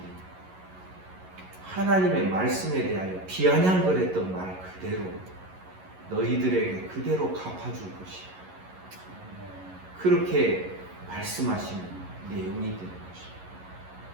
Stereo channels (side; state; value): left; late; 11 ms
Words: 하나님의 말씀에 대하여 비아냥거렸던 말 그대로 너희들에게 그대로 갚아줄 것이다. 그렇게 말씀하시는 내용이 되는 것입니다.